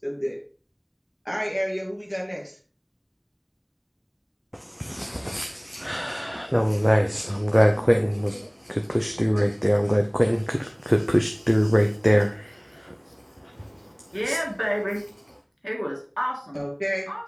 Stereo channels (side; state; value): both; identical; correlation 1.00